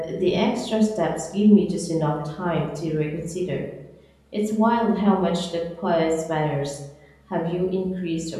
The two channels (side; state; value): both; identical; correlation 1.00